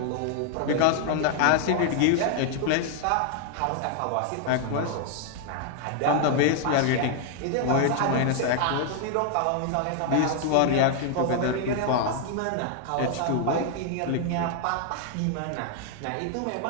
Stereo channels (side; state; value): both; different; correlation 0.00